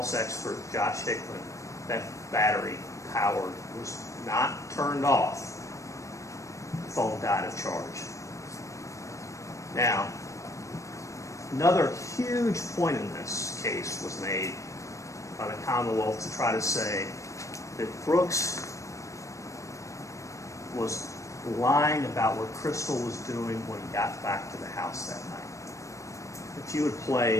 expert, Josh Hickman, that battery powered was not turned off. The phone died of charge. Now, another huge point in this case was made by the Commonwealth to try to say that Brooks was lying about what Crystal was doing when he got back to the house that night. If you would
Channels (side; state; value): right; late; 0.15 ms